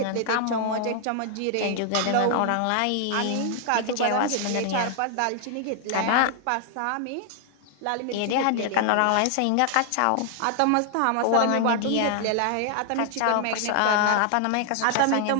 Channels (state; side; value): different; both; correlation 0.00